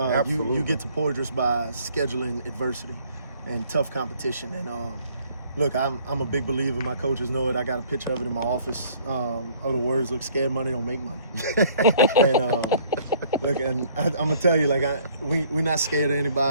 You get to Porter by scheduling adversity and tough competition. And look, I'm a big believer. My coaches know it. I got a picture of it in my office. The words look: "Scared money don't make money." And look, and I'm gonna tell you, like, we're not scared of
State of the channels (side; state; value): both; inverted; correlation -0.58